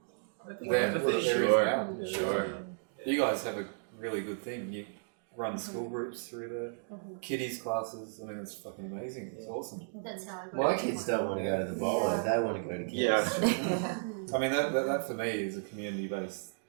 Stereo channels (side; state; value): left; silent; digital silence